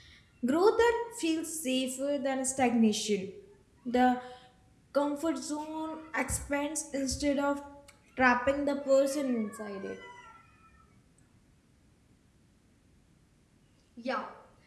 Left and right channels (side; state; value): both; identical; correlation 1.00